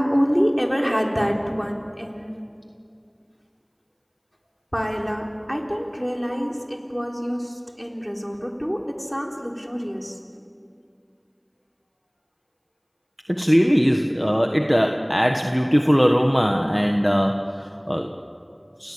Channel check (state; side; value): identical; both; correlation 1.00